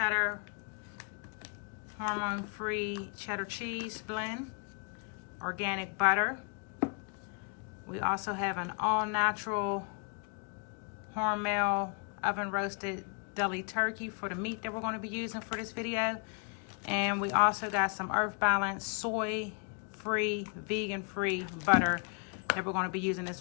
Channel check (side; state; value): right; quieter; 39.5 dB